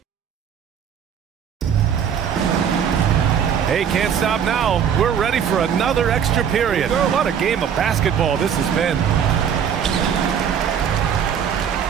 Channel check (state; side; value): quieter; left; 8.1 dB